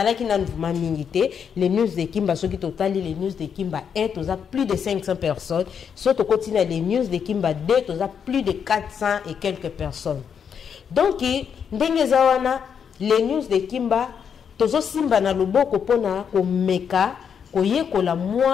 nanu vraiment mingi te les news de Kimba soki totali les news de Kimba 1 toza plus de 500 personnes so to continue les news de Kimba 2 toza plus de 400 et quelques personnes donc ndenge za wana les news de Kimba tozo simba na loboko pona ko meka koyekola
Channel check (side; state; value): right; quieter; 7.3 dB